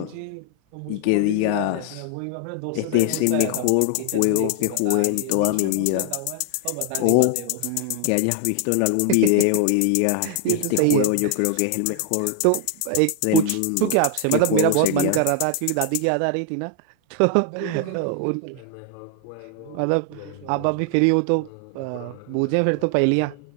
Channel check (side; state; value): both; different; correlation 0.00